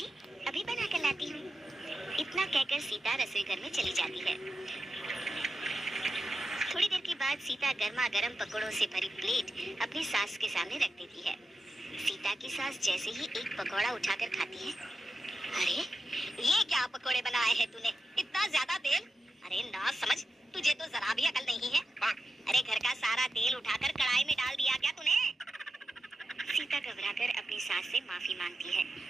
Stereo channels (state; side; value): normal; both; correlation 0.90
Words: अभी बना कर लाती हूँ। इतना कहकर सीता रसोई घर में चली जाती है। थोड़ी देर के बाद सीता गर्मा गर्म पकौड़ों से भरी प्लेट अपनी सास के सामने रख देती है। सीता की सास जैसे ही एक पकौड़ा उठाकर खाती है, अरे ये क्या पकौड़े बनाए हैं तूने, इतना ज्यादा तेल। अरे ना समझ, तुझे तो जरा भी अकल नहीं है। अरे घर का सारा तेल उठाकर कढ़ाई में डाल दिया क्या तूने। सीता घबराकर अपनी सास से माफी मांगती है।